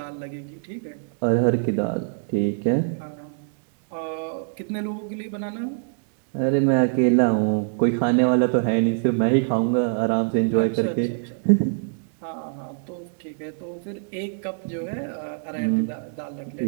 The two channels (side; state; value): left; silent; digital silence